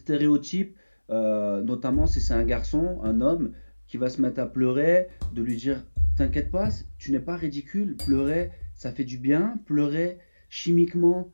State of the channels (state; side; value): inverted; both; correlation -1.00